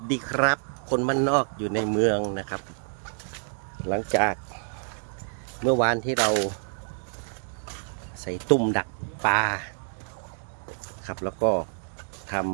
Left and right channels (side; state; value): left; silent; digital silence